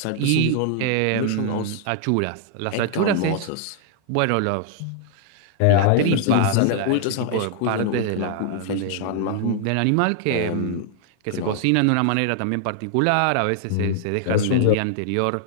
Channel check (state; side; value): different; both; correlation 0.00